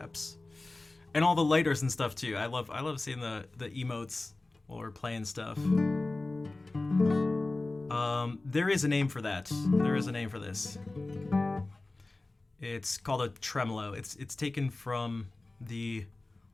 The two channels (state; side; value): quieter; right; 3.1 dB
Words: And all the lighters and stuff too. I love seeing the emotes while we're playing stuff. There is a name for that. There is a name for this. It's called a tremolo. It's taken from the